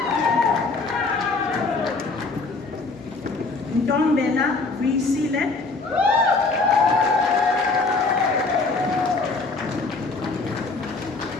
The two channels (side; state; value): right; quieter; 3.8 dB